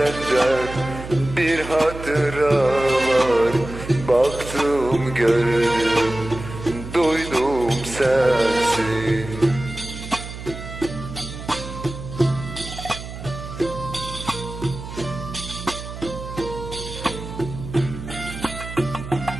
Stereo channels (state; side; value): noise; right; hum, 10 dB below the sound